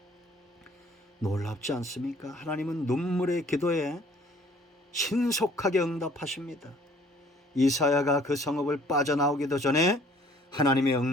놀랍지 않습니까? 하나님은 눈물의 기도에 신속하게 응답하십니다. 이사야가 그 성읍을 빠져나오기도 전에 하나님의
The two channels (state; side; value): normal; both; correlation 0.57